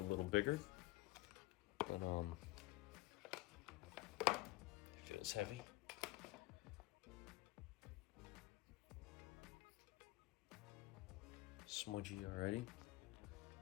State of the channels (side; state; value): right; quieter; 19.5 dB